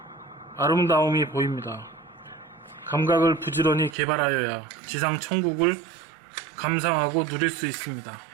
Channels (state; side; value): drops out; left; at 4.0 s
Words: 아름다움이 보입니다. 감각을 부지런히 개발하여야 지상 천국을 감상하고 누릴 수 있습니다.